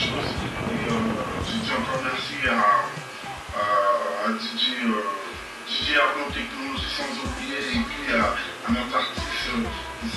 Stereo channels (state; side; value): identical; both; correlation 1.00